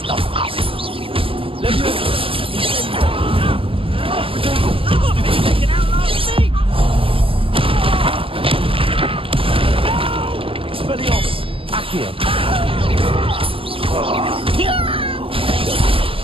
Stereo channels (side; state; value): left; late; 0.26 ms